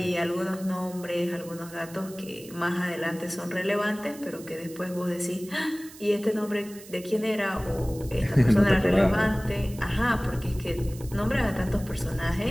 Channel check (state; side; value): noise; right; hiss, 18 dB below the sound